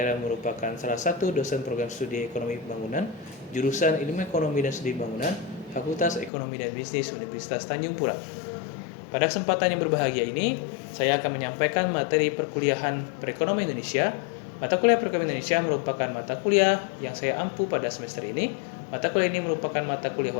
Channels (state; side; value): drops out; right; at 6.3 s